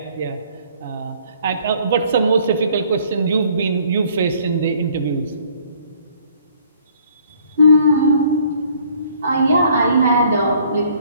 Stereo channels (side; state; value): both; inverted; correlation -0.59